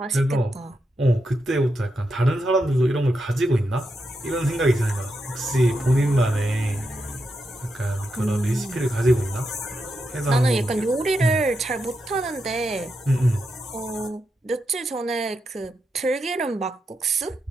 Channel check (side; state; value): both; normal; correlation 0.85